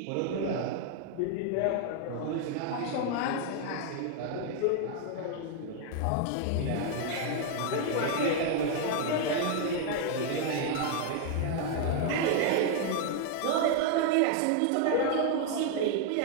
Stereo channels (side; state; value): both; different; correlation 0.00